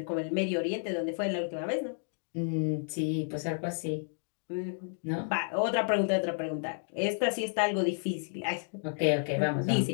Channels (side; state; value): right; silent; digital silence